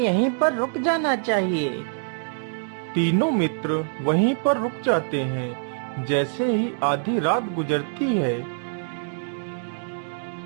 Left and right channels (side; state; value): left; silent; digital silence